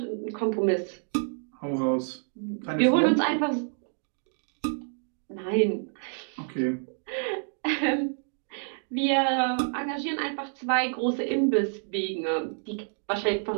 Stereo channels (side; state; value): left; silent; 59 dB below the other